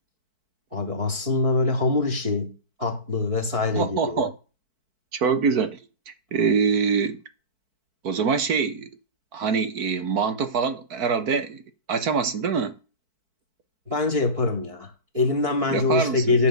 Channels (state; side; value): late; left; 4.5 ms